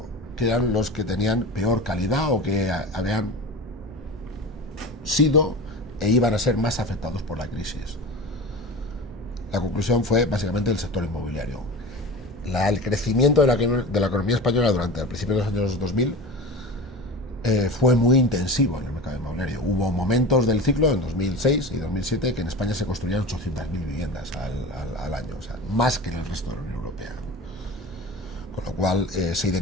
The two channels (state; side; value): normal; both; correlation 0.31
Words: que eran los que tenían peor calidad o que habían sido e iban a ser más afectados por la crisis. La conclusión fue básicamente el sector inmobiliario. El crecimiento de la economía española durante el principio de los años 2000 fue muy intensivo en el mercado inmobiliario. Hubo momentos del ciclo, en 2006 y 2007, que en España se construían 800.000 viviendas al año, o sea, más que en el resto de la Unión Europea. Con lo cual se